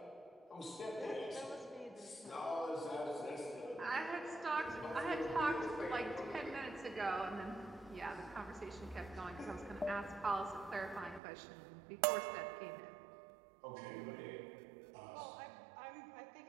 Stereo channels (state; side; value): drops out; left; at 11.2 s